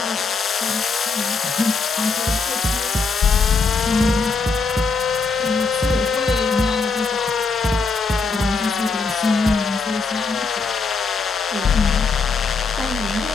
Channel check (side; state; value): right; quieter; 4.4 dB